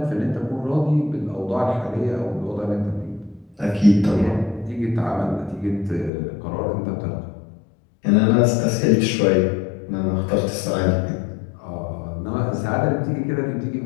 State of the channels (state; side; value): drops out; right; at 6.1 s